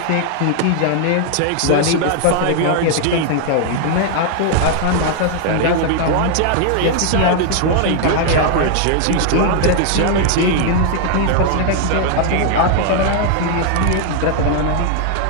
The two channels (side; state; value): both; different; correlation 0.00